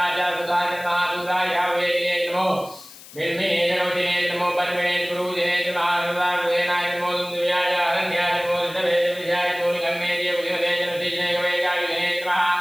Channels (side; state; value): left; noise; hiss, 19 dB below the sound